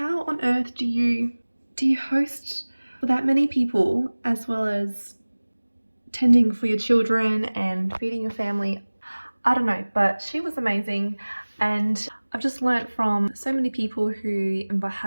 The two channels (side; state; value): both; inverted; correlation -1.00